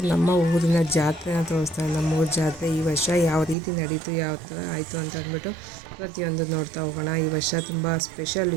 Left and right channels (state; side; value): drops out; left; at 3.6 s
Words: ನಮ್ಮ ಊರಿನ ಜಾತ್ರೆನ ತೋರಿಸ್ತಾ ಇರೋದು. ನಮ್ಮ ಊರ ಜಾತ್ರೆ ಈ ವರ್ಷ ಯಾವ ರೀತಿ ನಡೀತು, ಯಾವ ಥರ ಆಯಿತು ಅಂತ ಅಂದ್ಬಿಟ್ಟು ಪ್ರತಿಯೊಂದು ನೋಡ್ತಾ ಹೋಗೋಣ. ಈ ವರ್ಷ ತುಂಬ ಸ್ಪೆಷಲ್.